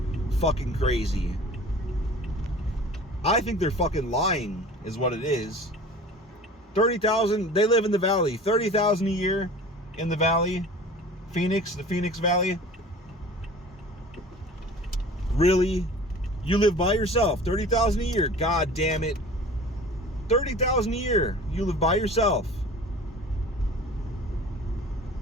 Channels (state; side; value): normal; both; correlation 0.42